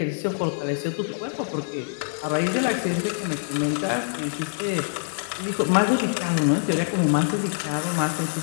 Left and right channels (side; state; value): right; silent; digital silence